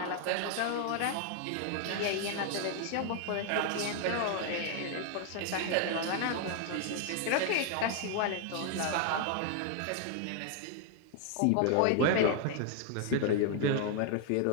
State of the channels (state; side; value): different; both; correlation 0.00